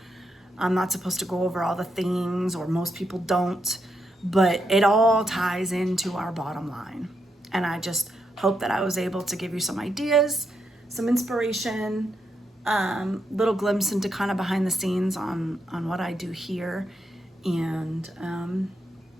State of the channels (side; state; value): both; normal; correlation 0.81